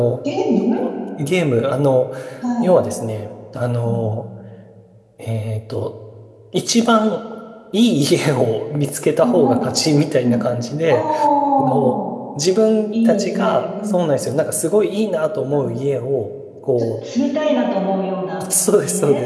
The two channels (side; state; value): both; identical; correlation 1.00